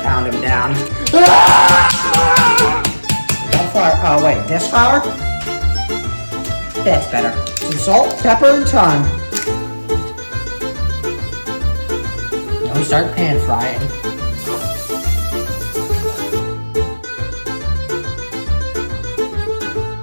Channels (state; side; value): inverted; both; correlation -1.00